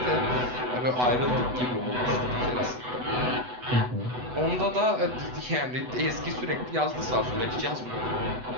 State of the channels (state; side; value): late; left; 8.1 ms